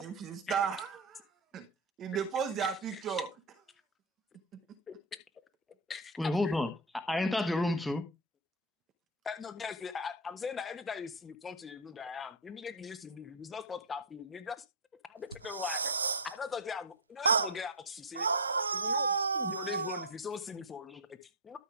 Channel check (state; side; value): normal; both; correlation 0.08